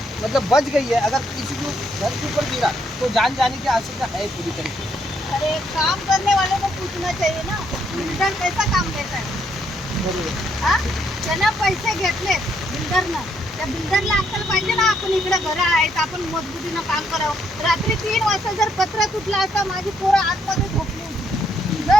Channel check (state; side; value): normal; both; correlation 0.73